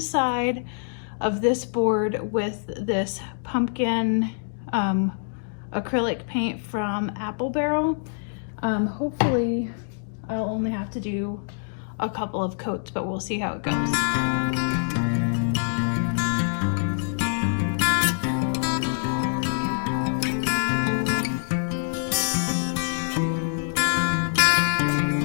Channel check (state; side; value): silent; right; digital silence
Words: of this board with this pumpkin acrylic paint from Apple Barrel. Hopefully I'll only have to do a couple of coats, but we'll see how it goes.